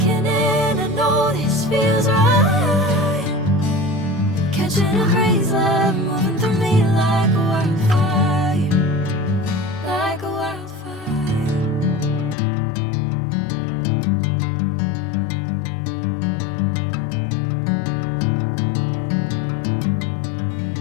in, I know this feels right. Catching a crazy love, moving through me like a wildfire, like a wildfire.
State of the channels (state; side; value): drops out; right; at 12.4 s